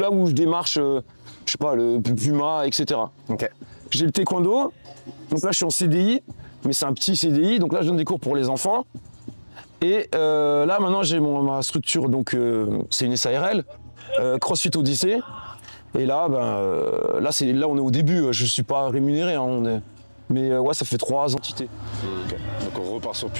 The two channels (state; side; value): inverted; both; correlation -1.00